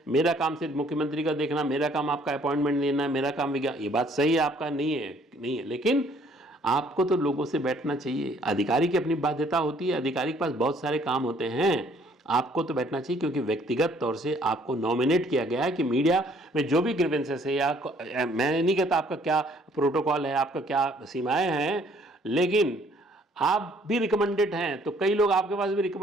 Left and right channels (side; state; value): both; normal; correlation 0.61